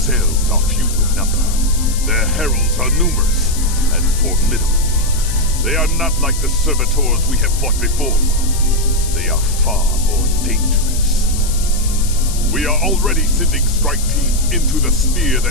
are few in number, their heralds are numerous and formidable. They are not like the servitors we have fought before. They are far more dangerous. We are already sending strike teams into the sphere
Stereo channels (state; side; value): noise; left; hiss, 9 dB below the sound